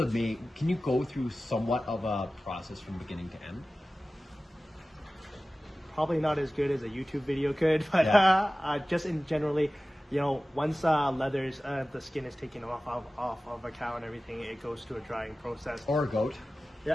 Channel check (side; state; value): both; normal; correlation 0.96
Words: main, can you go through somewhat of a process from beginning to end? Probably not as good as a YouTube video could, but just in generally, once leathers, the skin is taken off of a cow and everything, it goes to a drying process. Or a goat.